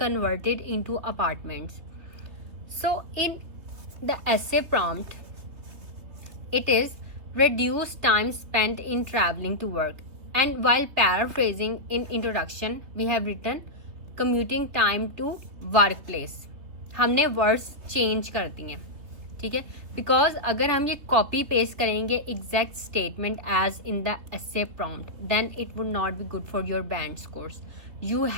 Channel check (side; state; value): left; late; 3.2 ms